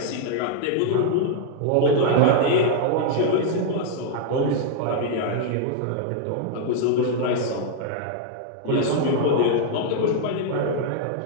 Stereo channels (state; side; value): different; both; correlation 0.00